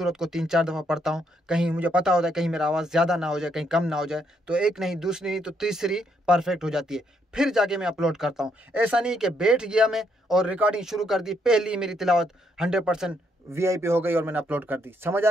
को 3-4 दफ़ा पढ़ता हूँ। कहीं मुझे पता होता है कहीं मेरा आवाज़ ज़्यादा ना हो जाए, कहीं कम ना हो जाए, तो एक नहीं, दूसरी नहीं, तो तीसरी परफेक्ट हो जाती है। फिर जाके मैं अपलोड करता हूँ। ऐसा नहीं कि बैठ गया मैं और रिकॉर्डिंग शुरू कर दी, पहली मेरी तिलावत 100% VIP हो गई और मैंने अपलोड कर दी। समझ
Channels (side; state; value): both; normal; correlation 0.74